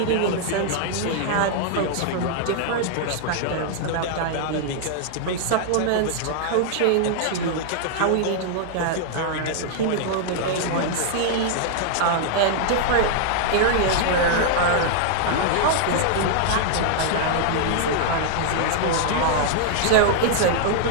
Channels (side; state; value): both; different; correlation -0.01